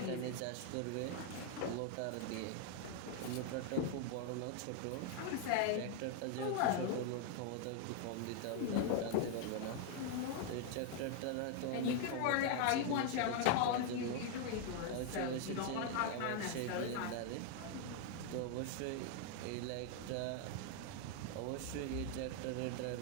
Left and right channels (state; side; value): different; both; correlation 0.00